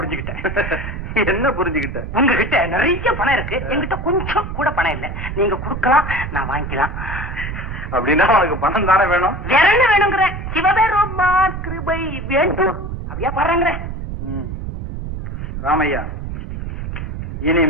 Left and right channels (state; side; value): noise; right; rumble, 6 dB below the sound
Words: என்ன புரிஞ்சுக்கிட்ட? உங்ககிட்ட நிறைய பணம் இருக்கு, என்கிட்ட கொஞ்சம் கூட பணம் இல்ல. நீங்க கொடுக்கலாம், நான் வாங்கிக்கலாம். அப்படின்னா உனக்கு பணம் தானே வேணும்? வேற என்ன வேணுங்கிற? சிவபெருமான் கிருபை வேண்டும் அப்படியா பாருங்கிற? ராமையா,